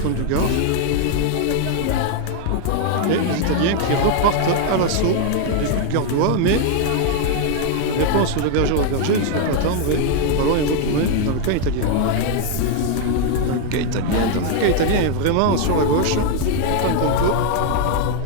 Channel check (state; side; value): different; both; correlation 0.00